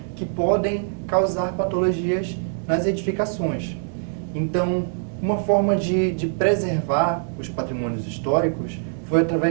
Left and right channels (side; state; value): left; silent; digital silence